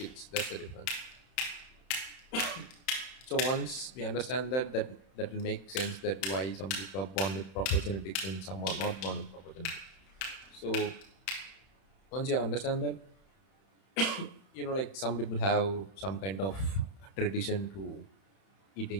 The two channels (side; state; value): right; late; 31 ms